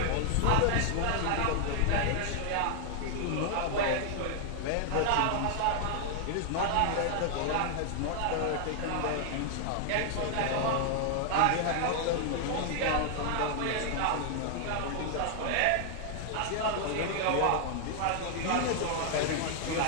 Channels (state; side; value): different; both; correlation 0.00